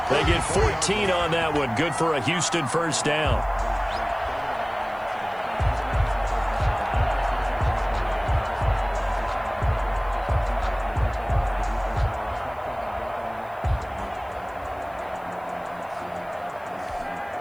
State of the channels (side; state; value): left; noise; hiss, 29 dB below the sound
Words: They get 14 on that one. Good for a Houston 1st down.